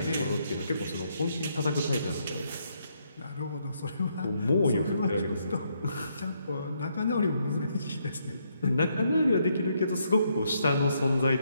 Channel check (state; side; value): inverted; both; correlation -0.75